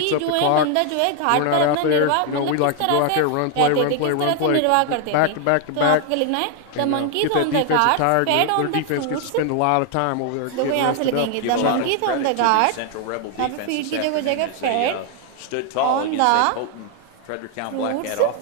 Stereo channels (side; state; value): both; different; correlation 0.00